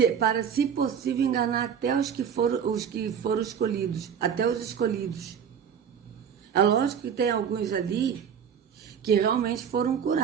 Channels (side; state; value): left; quieter; 7.7 dB